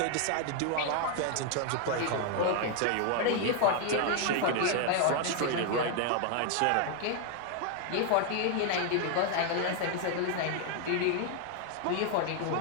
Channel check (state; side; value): different; both; correlation 0.00